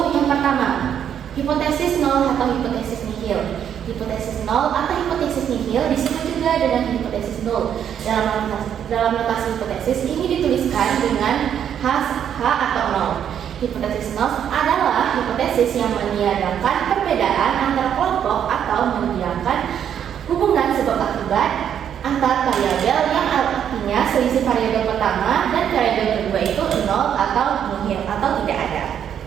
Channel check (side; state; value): left; quieter; 9.1 dB